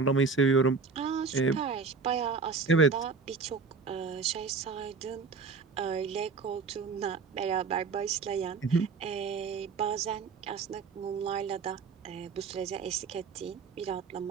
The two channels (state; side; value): quieter; left; 4.9 dB